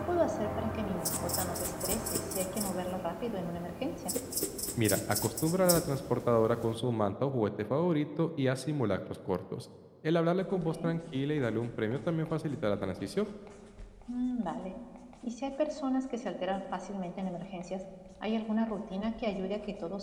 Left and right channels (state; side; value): identical; both; correlation 1.00